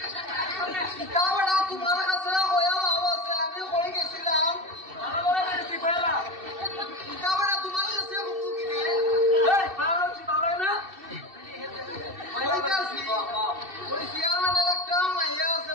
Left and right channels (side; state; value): left; late; 2.6 ms